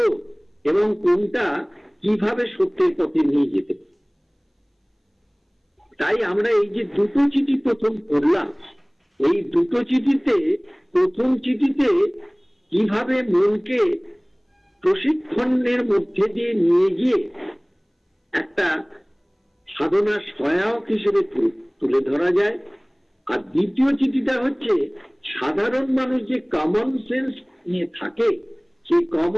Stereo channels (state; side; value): identical; both; correlation 1.00